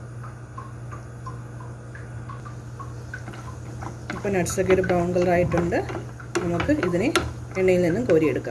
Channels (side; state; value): both; identical; correlation 1.00